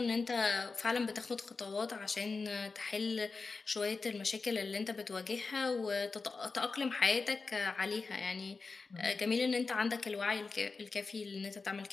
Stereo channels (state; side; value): quieter; right; 4.3 dB